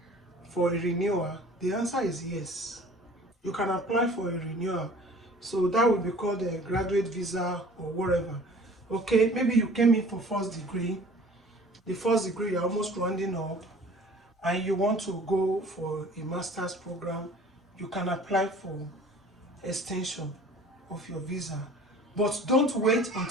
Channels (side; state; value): both; normal; correlation 0.49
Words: for a renewal? The answer is yes. You can apply for a renewal. So that will be called a graduate visa or whatever. Okay, maybe you came in for first degree. The first degree you're almost rounding up. and you want to go for a master's program, you can apply for extension of your visa. But don't wait